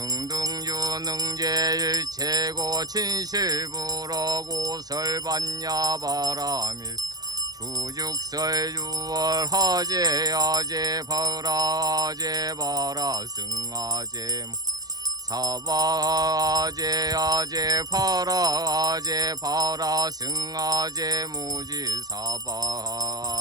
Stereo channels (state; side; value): late; left; 0.19 ms